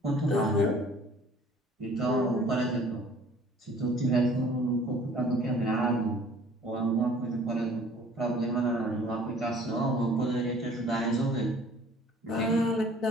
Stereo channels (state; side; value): normal; both; correlation 0.52